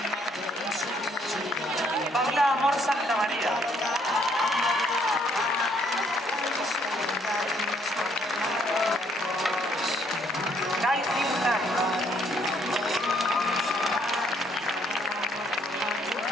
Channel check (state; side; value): normal; both; correlation 0.67